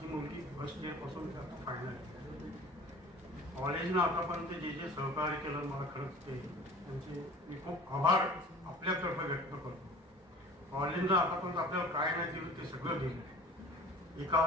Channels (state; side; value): normal; both; correlation 0.43